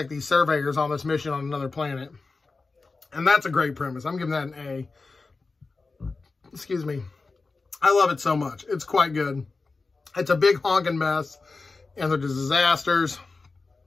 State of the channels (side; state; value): right; quieter; 3.9 dB